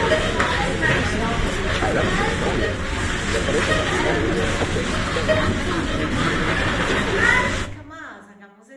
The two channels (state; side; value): identical; both; correlation 1.00